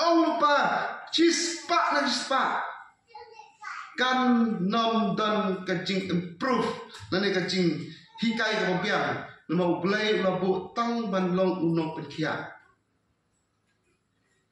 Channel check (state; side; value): identical; both; correlation 1.00